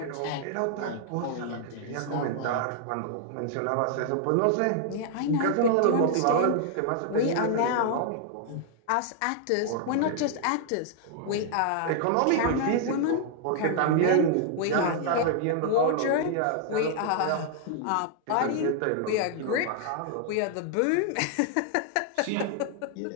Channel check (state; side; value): different; both; correlation 0.00